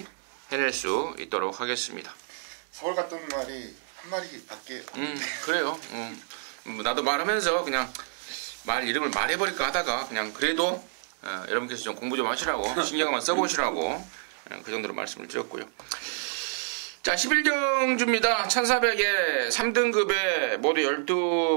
해낼 수 있도록 하겠습니다. 서울 갔던 말이 한 마리밖에 그래요. 나도 말하면서 그냥 말 이름을 말해버릴까 하다가 그냥 그래도 여러분께서 좀 공부 좀 하시라고 신경만 써보시라고 그 정도로 말씀을 드렸고요. 자, 11경주입니다. 1400에 3등급에 모두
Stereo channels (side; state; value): left; silent; digital silence